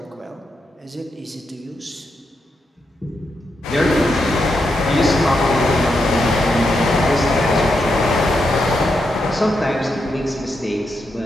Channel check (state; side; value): normal; both; correlation 0.83